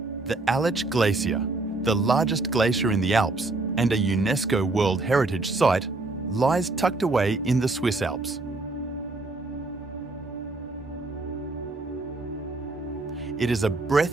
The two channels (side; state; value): left; quieter; 3.2 dB